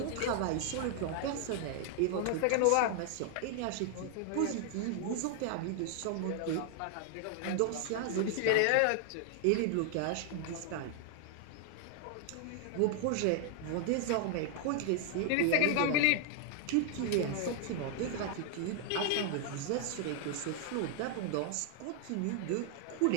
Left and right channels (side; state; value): both; different; correlation 0.00